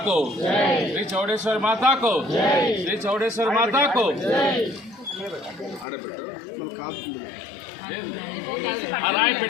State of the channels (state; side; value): drops out; right; at 5.9 s